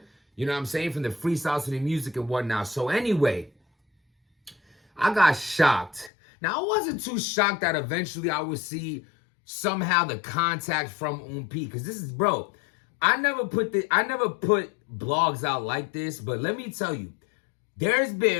You know what I'm saying? From the freestyles to the music and whatnot. So anyway, I got shocked. Now, I wasn't too shocked that eventually I would see somehow the contact from OUN P. Because this is, bro, I never put blogs out like this. But let me tell you, there's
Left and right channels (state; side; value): drops out; right; at 6.1 s